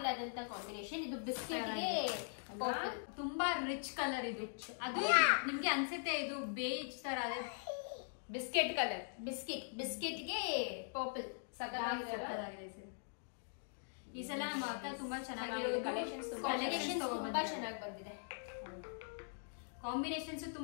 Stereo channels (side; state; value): right; silent; digital silence